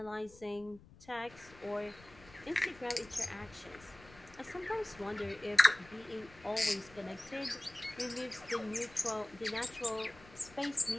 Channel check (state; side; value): noise; left; rumble, 22 dB below the sound